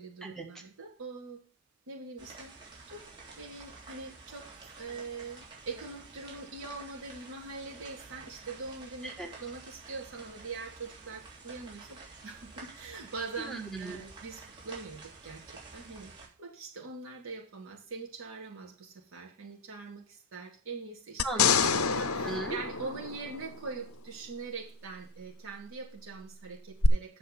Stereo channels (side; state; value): both; normal; correlation 0.20